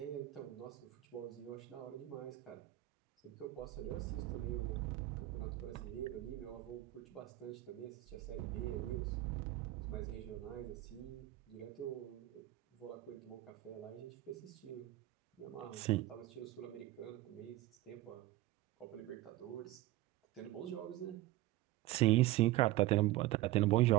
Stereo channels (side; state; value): left; quieter; 16.7 dB